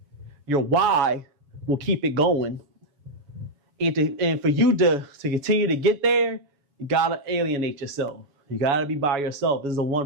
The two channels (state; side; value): late; left; 7.1 ms